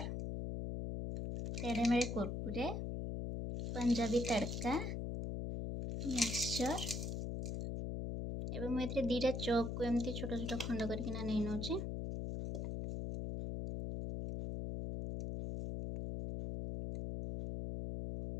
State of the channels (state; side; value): noise; left; hum, 3 dB below the sound